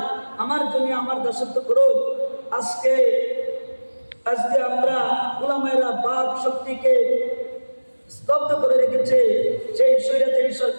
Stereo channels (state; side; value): inverted; both; correlation -1.00